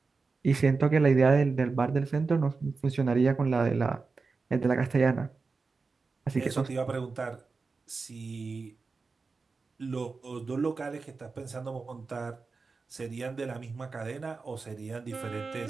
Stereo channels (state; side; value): quieter; left; 4.3 dB